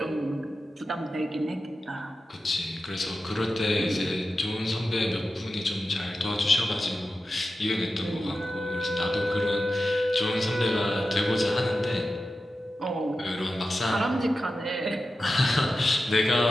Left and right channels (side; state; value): both; normal; correlation 0.92